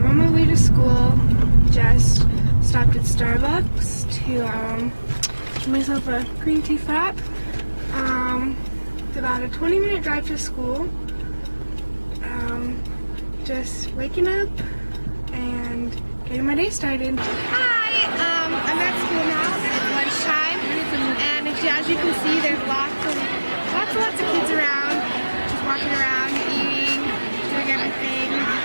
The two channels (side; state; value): both; inverted; correlation -1.00